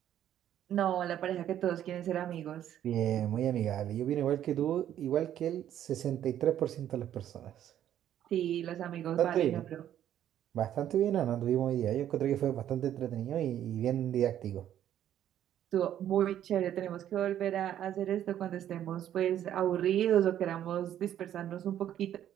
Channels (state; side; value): quieter; left; 11.0 dB